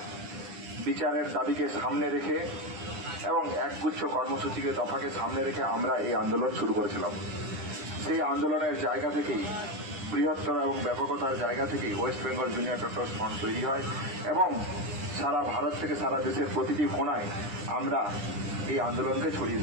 বিচারের দাবিকে সামনে রেখে এবং একগুচ্ছ কর্মসূচিকে দফাকে সামনে রেখে আমরা এই আন্দোলন শুরু করেছিলাম। সেই আন্দোলনের জায়গা থেকেই, বৃহত্তর এবং ব্যাপকতার জায়গা থেকেই West Bengal junior doctors front তৈরি হয় এবং সারা ভারত থেকে সারা দেশের প্রতিটি কোণায় আমরা এই আন্দোলনকে ছড়িয়ে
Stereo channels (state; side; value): late; left; 10 ms